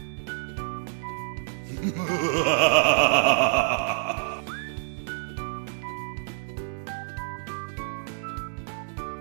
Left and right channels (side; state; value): left; silent; digital silence